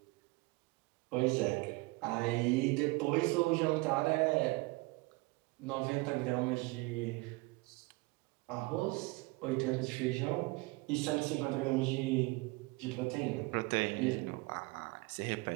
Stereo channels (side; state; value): left; quieter; 24.4 dB